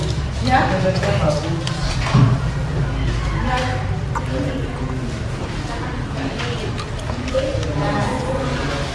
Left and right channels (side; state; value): both; identical; correlation 1.00